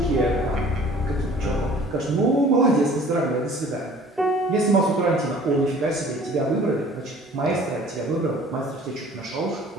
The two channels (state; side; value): normal; both; correlation 0.50